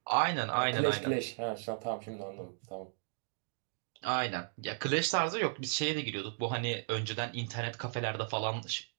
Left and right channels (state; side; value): silent; left; digital silence